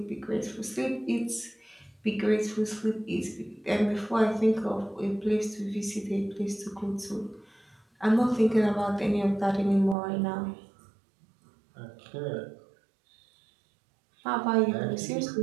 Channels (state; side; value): drops out; left; at 10.0 s